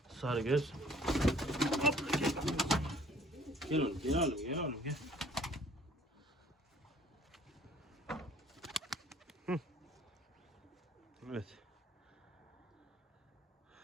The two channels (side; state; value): both; normal; correlation 0.56